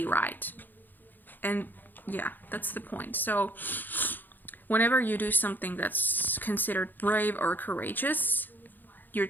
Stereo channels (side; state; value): right; late; 0.088 ms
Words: right. And yeah, that's the point. So whenever you do something that's considered brave or courageous, you're